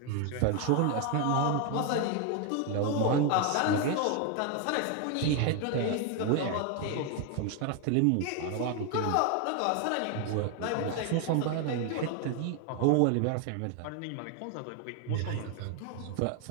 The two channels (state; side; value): different; both; correlation 0.01